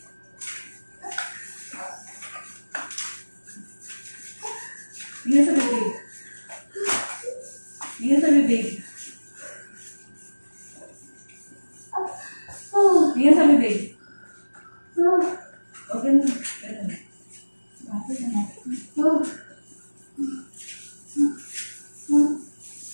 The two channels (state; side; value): inverted; both; correlation -1.00